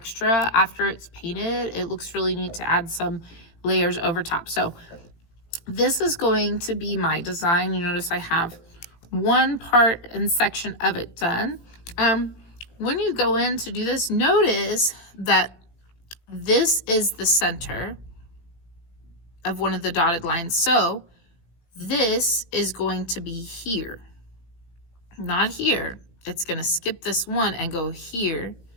after it's painted, it looks really neat to add some layers over top. So this is going to be my design. You notice I have one part and section of it done. When you go in to do this, notice that this is the center of one of the dotted lines. So this is going to be here, not here. It's going to skip this one and go here,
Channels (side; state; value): right; late; 17 ms